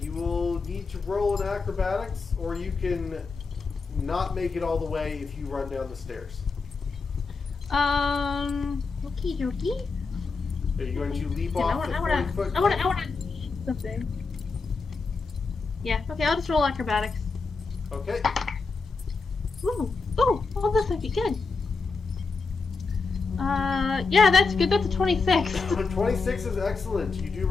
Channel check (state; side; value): quieter; right; 4.4 dB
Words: You will need to roll an acrobatics, or you can not make it all the way if you run down the stairs. Okie dokie. Are you going to leap Yeah, off the 40-foot? I wanna something. Yeah, okay, I'll just roll acrobatics. Okay. Ooh, oh, this might be good. Yeah, that's good. That's a 26. 26 is excellent. You do